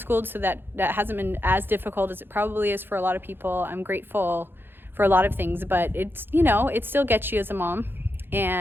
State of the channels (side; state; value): left; late; 0.10 ms